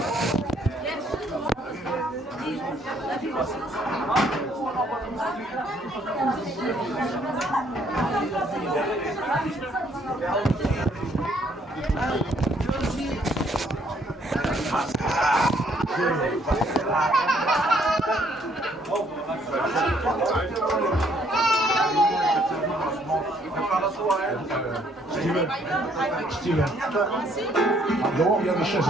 Steven. Dehors, il y a des chaises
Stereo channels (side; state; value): both; normal; correlation 0.66